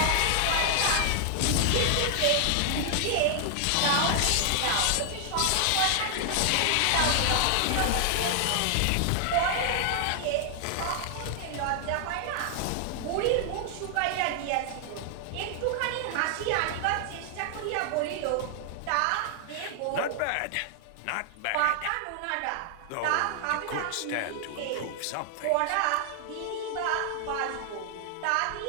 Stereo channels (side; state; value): both; different; correlation 0.00